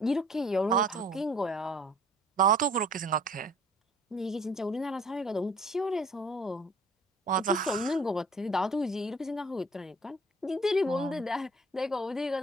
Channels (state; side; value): normal; both; correlation 0.52